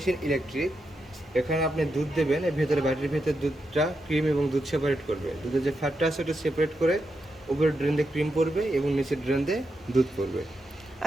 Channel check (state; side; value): normal; both; correlation 0.85